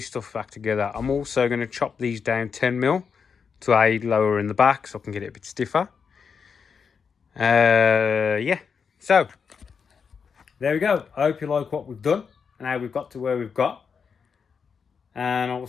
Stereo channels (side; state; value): right; quieter; 6.1 dB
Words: stuff back together. I'm also going to chop these down 10mm to aid lower in the back, so I can get it a bit stiffer. Yeah, so there we go. I hope you like what we've done and how we've got to where we've got. And I will